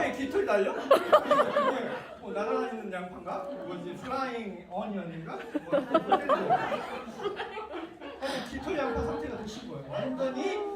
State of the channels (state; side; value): identical; both; correlation 1.00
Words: 깃털 달려? 이게 날아다니는 양파인가? 뭐지? 플라잉 어니언인가? 깃털 양파 상태가 드신 거예요. 완전히